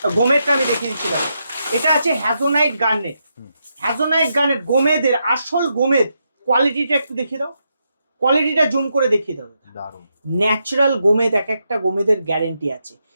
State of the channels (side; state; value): both; inverted; correlation -0.83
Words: গোমেদটা আমি দেখিয়ে দিচ্ছি। দেখো এটা আছে হ্যাজোনাইট গার্নেট। হ্যাজোনাইট গার্নেট গোমেদের আসল গোমেদ। কোয়ালিটিটা একটু দেখিয়ে দাও, কোয়ালিটিটা জুম করে দেখিয়ে দাও। ন্যাচারাল গোমেদ, এক একটা গোমেদের গ্যারেন্টি আছে।